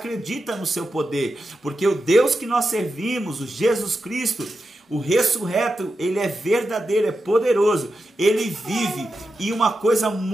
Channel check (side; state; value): both; normal; correlation 0.89